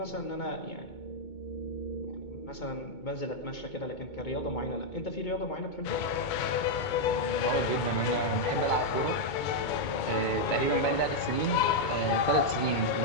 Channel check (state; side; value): late; right; 2.2 ms